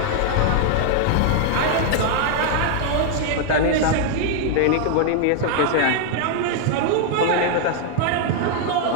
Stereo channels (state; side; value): different; both; correlation 0.00